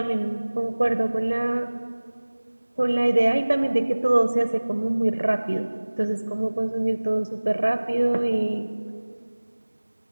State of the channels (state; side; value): inverted; both; correlation -1.00